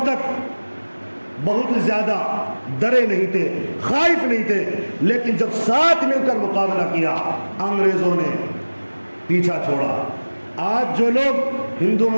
تک بہت زیادہ ڈرے نہیں تھے, خائف نہیں تھے, لیکن جب ساتھ مل کر مقابلہ کیا انگریزوں نے پیچھا چھوڑا. آج جو لوگ ہندو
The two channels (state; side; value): inverted; both; correlation -1.00